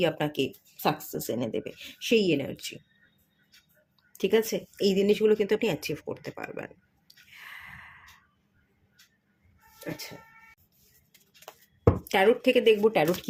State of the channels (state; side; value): identical; both; correlation 1.00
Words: আপনাকে সাকসেস এনে দেবে, সেই এনার্জি। ঠিক আছে, এই জিনিসগুলো কিন্তু আপনি অ্যাচিভ করতে পারবেন। আচ্ছা, ট্যারোট থেকে দেখবো ট্যারোট